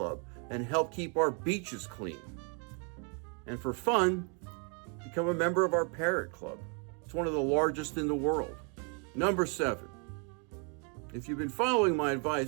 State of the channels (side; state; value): left; quieter; 37.8 dB